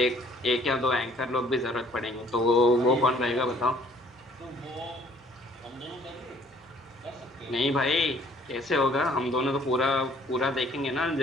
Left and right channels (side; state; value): both; normal; correlation 0.59